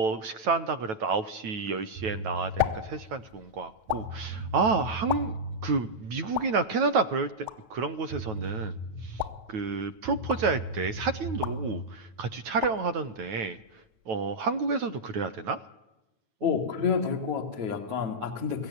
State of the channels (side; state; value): left; late; 9.2 ms